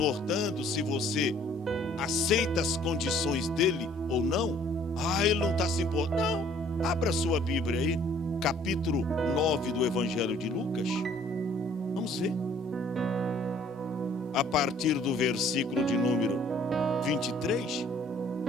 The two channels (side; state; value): both; normal; correlation 0.58